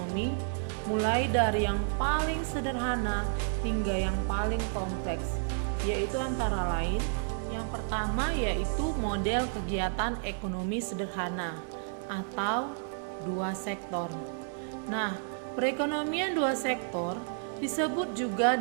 mulai dari yang paling sederhana hingga yang paling kompleks, yaitu antara lain yang pertama yaitu model kegiatan ekonomi sederhana atau dua sektor. Nah, perekonomian dua sektor disebut juga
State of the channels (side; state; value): left; silent; digital silence